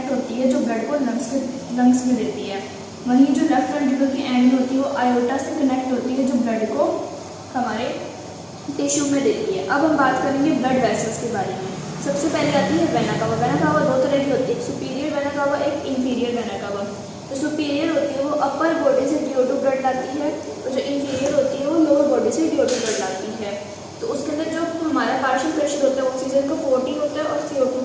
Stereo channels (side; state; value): both; identical; correlation 1.00